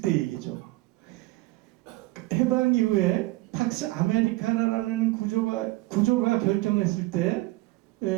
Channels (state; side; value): quieter; left; 20.5 dB